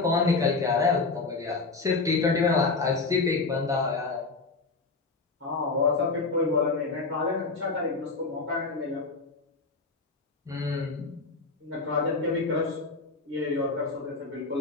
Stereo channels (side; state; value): right; quieter; 3.9 dB